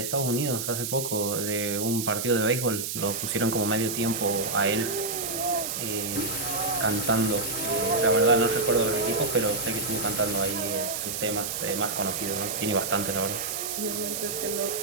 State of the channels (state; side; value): noise; right; hiss, 4 dB below the sound